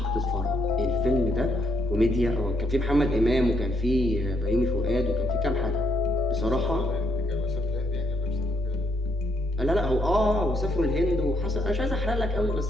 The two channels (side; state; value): right; noise; rumble, 25 dB below the sound